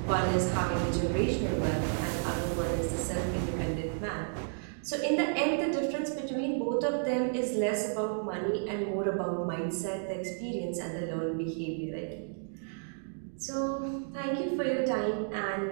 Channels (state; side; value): silent; left; digital silence